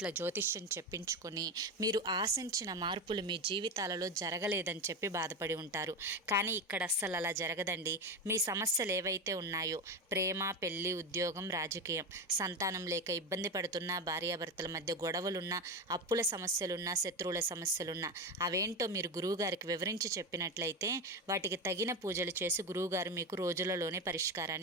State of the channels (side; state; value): both; normal; correlation 0.17